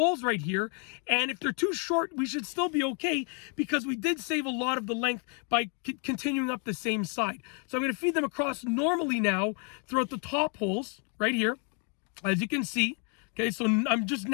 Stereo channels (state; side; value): quieter; right; 38.9 dB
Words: right here, and if they're too short, we should still be okay because we did save a lot of the length by continuing up the same side. So I'm going to feed them across normally now throughout the top holes right here, as you can see. Okay, so I'm just